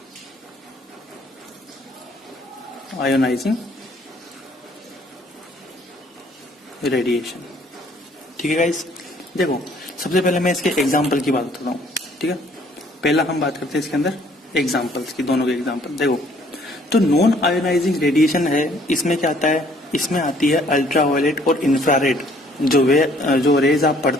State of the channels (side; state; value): both; normal; correlation 0.61